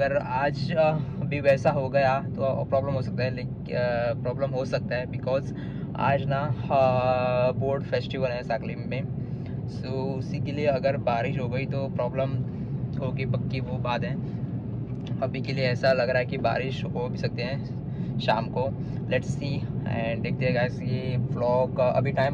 आज भी वैसा हो गया तो प्रॉब्लम हो सकता है, लेकिन बिकॉज आज ना बोर्ड फेस्टिवल है साकली में। सो उसी के लिए अगर बारिश हो गई तो प्रॉब्लम होगी, पक्की वो बात है। अभी के लिए ऐसा लग रहा है कि बारिश हो भी सकते हैं शाम को। लेट्स सी एंड देखते हैं गाइस। ये व्लॉग अभी टाइम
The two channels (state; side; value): identical; both; correlation 1.00